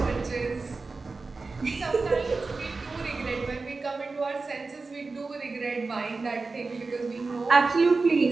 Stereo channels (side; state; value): left; quieter; 3.9 dB